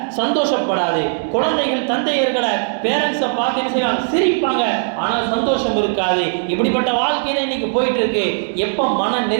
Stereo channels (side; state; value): left; silent; digital silence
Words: சந்தோஷப்படாது. குழந்தைகள் தந்தையர்களை பேரண்ட்ஸை பார்த்து என்ன செய்வாங்க, சிரிப்பாங்க, ஆனால் சந்தோஷம் இருக்காது. இப்படிப்பட்ட வாழ்க்கை தான் இன்னைக்கு போயிட்டு இருக்கு. எப்போ மன